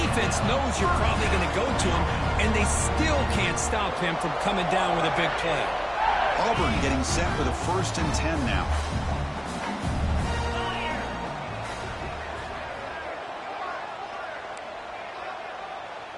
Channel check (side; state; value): both; identical; correlation 1.00